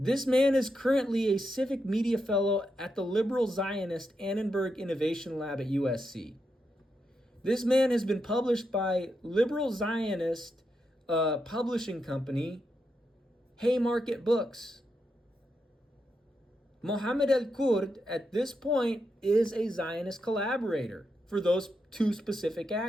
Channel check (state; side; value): normal; both; correlation 0.84